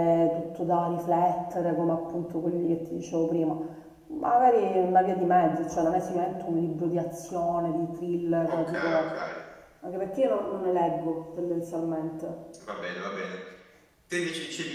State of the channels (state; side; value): identical; both; correlation 1.00